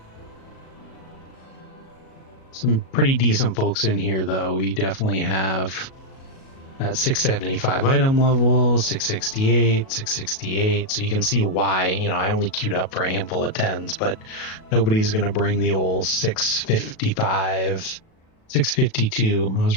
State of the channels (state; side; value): late; right; 37 ms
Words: Some pretty decent folks in here, though. We definitely have at 675 item level, 668, 668. So you can see why, I only queued up for a handful of 10s, but nobody's going to bring the old 655, 652. I was